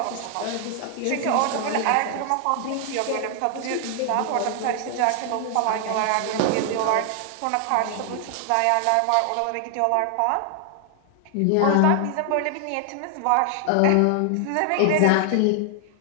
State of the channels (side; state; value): both; different; correlation 0.00